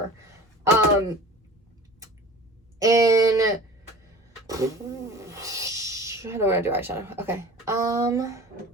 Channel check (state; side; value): normal; both; correlation 0.41